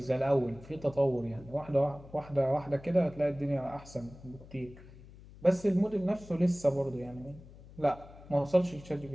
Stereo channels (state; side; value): noise; left; hum, 19 dB below the sound